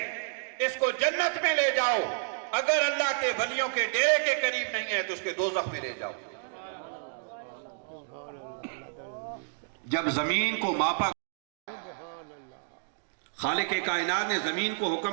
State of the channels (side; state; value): left; silent; digital silence